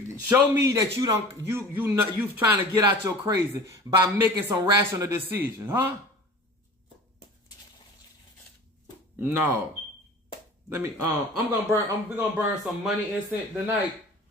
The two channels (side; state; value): both; normal; correlation 0.40